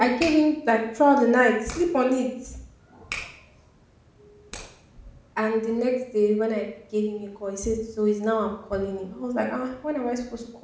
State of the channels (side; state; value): both; identical; correlation 1.00